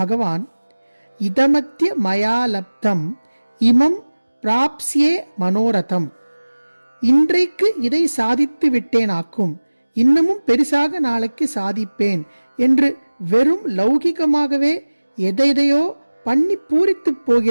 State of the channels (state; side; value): inverted; both; correlation -1.00